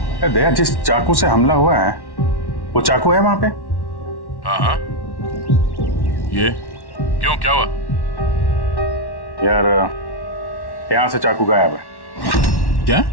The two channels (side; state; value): right; late; 1.1 ms